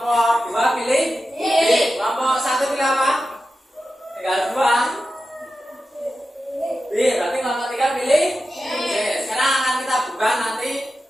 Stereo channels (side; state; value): both; normal; correlation 0.92